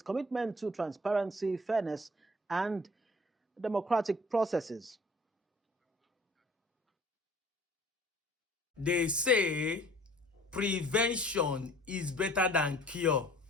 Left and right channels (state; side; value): normal; both; correlation 0.51